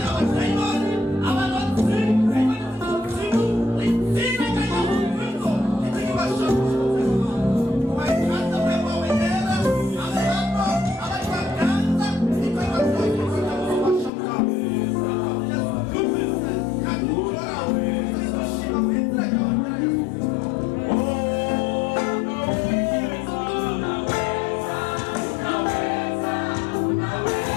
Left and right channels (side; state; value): right; drops out; at 14.1 s